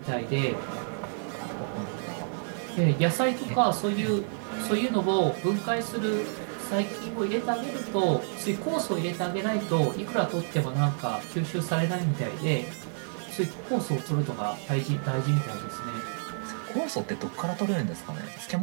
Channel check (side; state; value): left; silent; 58 dB below the other